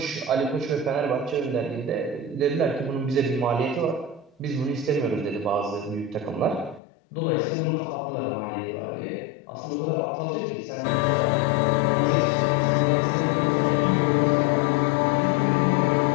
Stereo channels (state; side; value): drops out; right; at 6.8 s